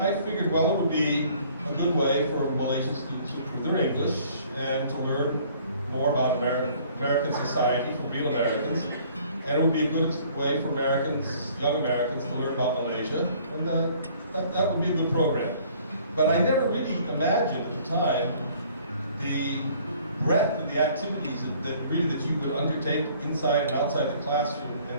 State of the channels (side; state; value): both; inverted; correlation -0.56